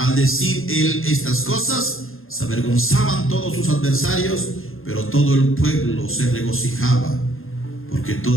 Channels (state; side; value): late; right; 0.60 ms